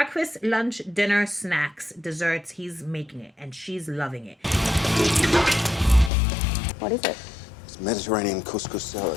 lunch, dinner, snacks, desserts. He's making it, and she's loving it. What is it? It's Mediterranean couscous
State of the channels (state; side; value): drops out; right; at 6.1 s